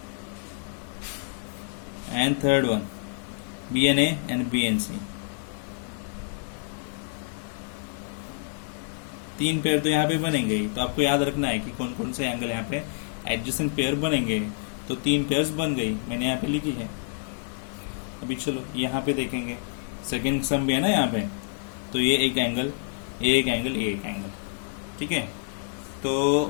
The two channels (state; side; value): silent; right; 59 dB below the other